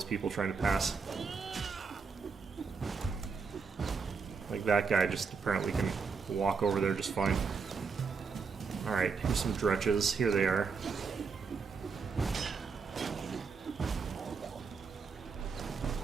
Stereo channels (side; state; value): left; quieter; 5.3 dB